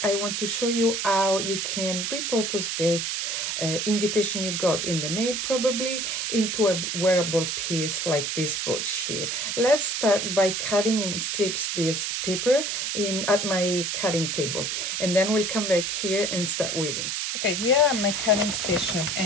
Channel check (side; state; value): right; noise; hiss, 1 dB below the sound